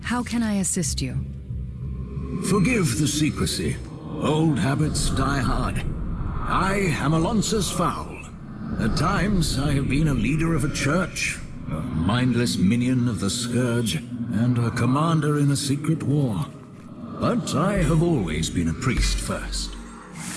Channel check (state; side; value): identical; both; correlation 1.00